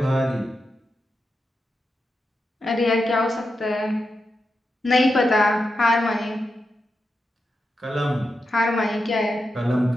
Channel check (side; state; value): both; normal; correlation 0.88